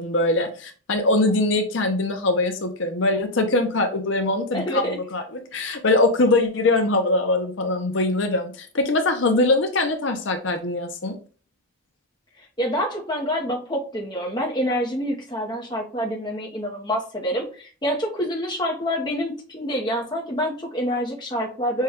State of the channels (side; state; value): both; normal; correlation 0.07